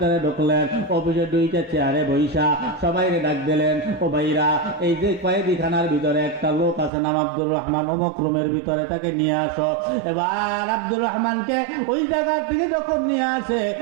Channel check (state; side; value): drops out; left; at 6.9 s